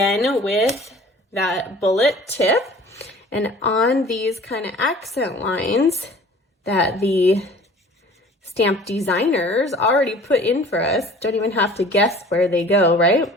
with that bullet tip, and on these kind of accent lines that the stamp designers already put in for us, don't even have to guess where they go, right?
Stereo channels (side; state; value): both; normal; correlation 0.47